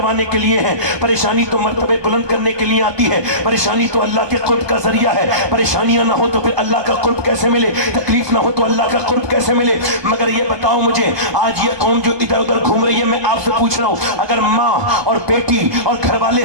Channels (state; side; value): late; left; 1.2 ms